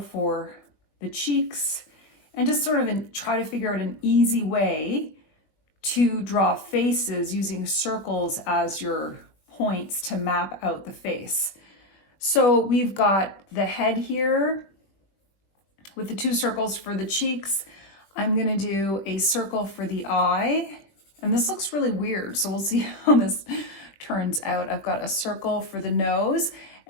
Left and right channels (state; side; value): late; right; 20 ms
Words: the cheeks and just sort of try to figure out an easy way to draw faces using circles as your points to map out the face. So we've got the head here with the two circles for the cheeks. I'm going to do a circle for the eye, and this looks really weird, so we'll see how this turns out. I've got a circle for the nose,